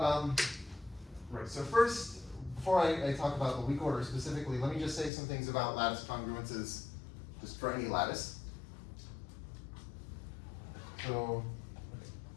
Right, so first, before I talk about the weak order specifically, let me just say some things about lattice congruences, just for any lattice. So, okay.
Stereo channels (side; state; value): right; drops out; at 5.1 s